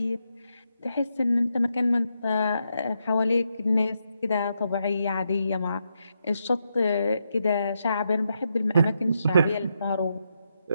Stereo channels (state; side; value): inverted; both; correlation -0.83